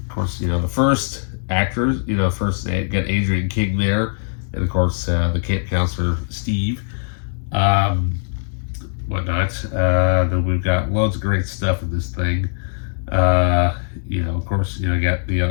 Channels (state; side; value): silent; right; 65 dB below the other